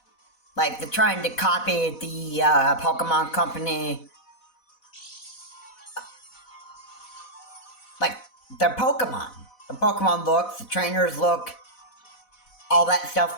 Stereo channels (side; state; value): right; late; 4.1 ms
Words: Like, they're trying to copy the Pokemon company, like, their Pokemon. The Pokemon looks, the trainers look, all that